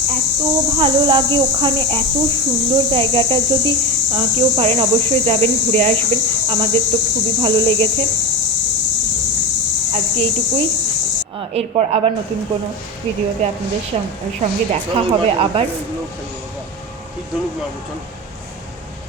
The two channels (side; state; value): both; normal; correlation 0.20